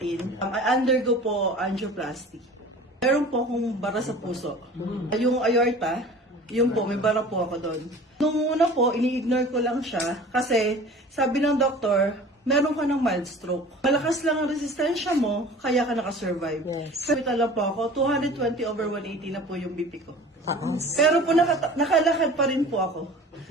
I undergo po angioplasty. Meron po akong bara sa puso. Yung aorta, yun po, may bara po ako doon. Nung una po, ini-ignore ko lang siya kasi sabi ng doktor, meron ka ng mild stroke. Malakas lang ang resistensya mo, kaya ka nakasurvive. Yes. Sa hospital lang po ako, 220/180 na po yung BP ko. Pero po nakalakad pa rin po ako.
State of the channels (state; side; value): normal; both; correlation 0.43